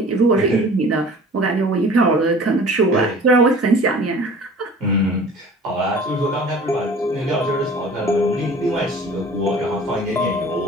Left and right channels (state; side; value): normal; both; correlation 0.45